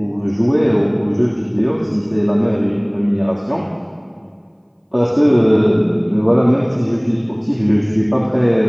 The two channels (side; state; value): both; identical; correlation 1.00